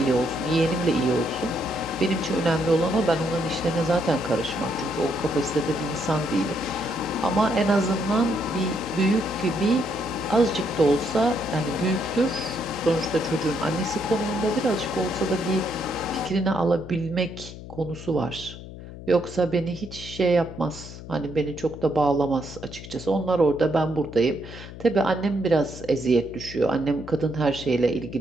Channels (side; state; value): left; noise; hum, 13 dB below the sound